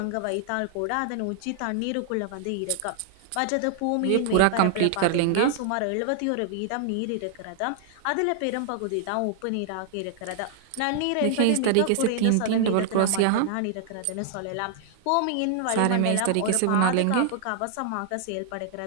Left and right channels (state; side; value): different; both; correlation 0.00